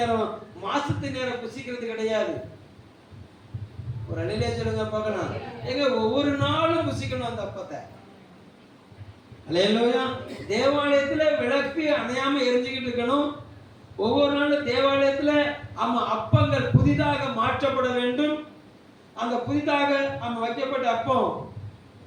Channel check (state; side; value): identical; both; correlation 1.00